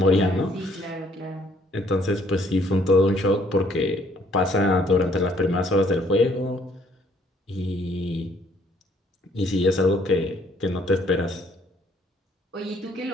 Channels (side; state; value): both; normal; correlation 0.64